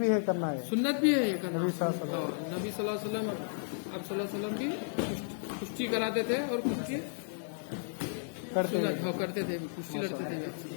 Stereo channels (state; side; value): silent; right; digital silence